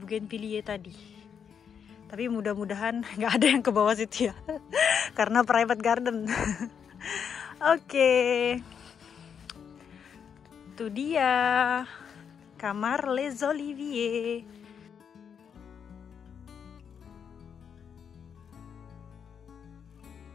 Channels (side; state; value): right; quieter; 7.4 dB